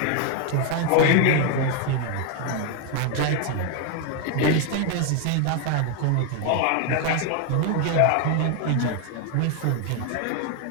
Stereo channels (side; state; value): both; different; correlation 0.01